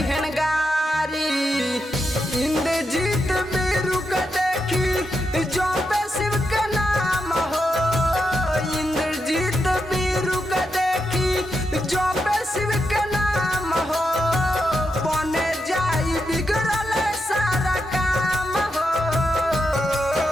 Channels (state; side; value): normal; both; correlation 0.85